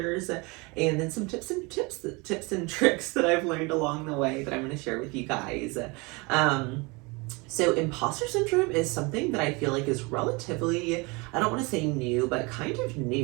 and then some tips and tricks that I've learned along the way that I'm going to share with you guys. So imposter syndrome is something that I feel like is relatively, I don't want to say new, but kind of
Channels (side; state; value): left; quieter; 27.1 dB